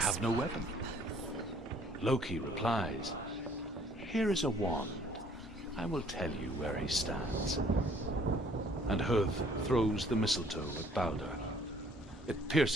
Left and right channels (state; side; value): normal; both; correlation 0.59